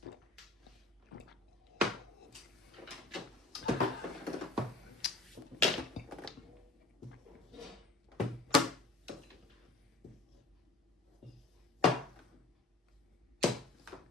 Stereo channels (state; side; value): quieter; right; 3.2 dB